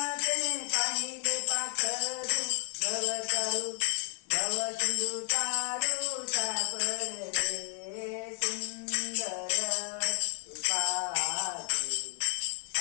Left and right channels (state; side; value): silent; right; 58 dB below the other